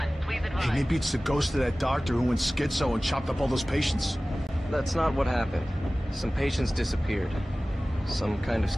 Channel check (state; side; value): normal; both; correlation 0.97